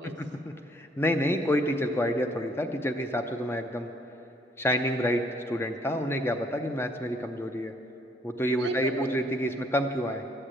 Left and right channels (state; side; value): normal; both; correlation 0.65